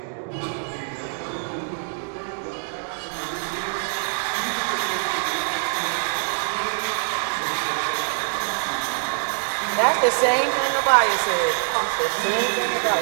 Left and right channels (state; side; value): silent; left; digital silence